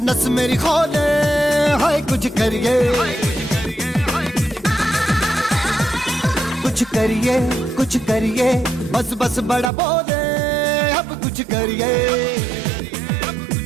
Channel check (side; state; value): left; drops out; at 9.7 s